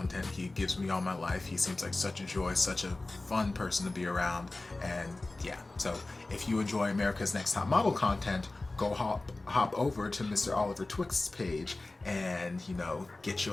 He gives me all my life. He seems like such a joy, such a fun person to be around. And yeah, so if you enjoy America's Next Top Model content, go hop over to Mr. Oliver Twixt's page and, you know, get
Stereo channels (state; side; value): quieter; right; 3.1 dB